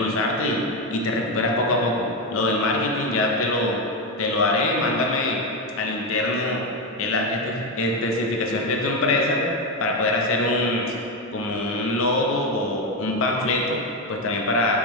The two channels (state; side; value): normal; both; correlation 0.10